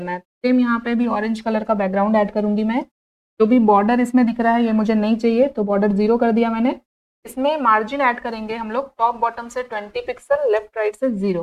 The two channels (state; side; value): identical; both; correlation 1.00